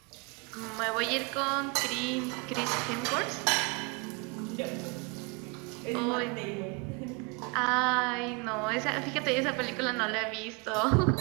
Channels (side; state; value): left; quieter; 30.2 dB